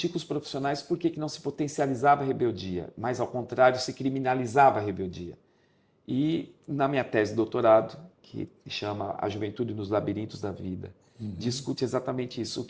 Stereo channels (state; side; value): identical; both; correlation 1.00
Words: com os profissionais por que não se potencializava a rebeldia, mas ao contrário se criminalizava a rebeldia. E na minha tese de doutorado, que chama A Juventude nos Labirintos da Vida, discute exatamente isso, o